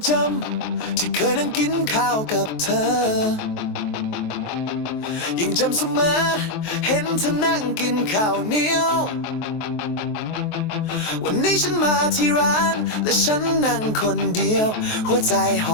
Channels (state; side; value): late; right; 23 ms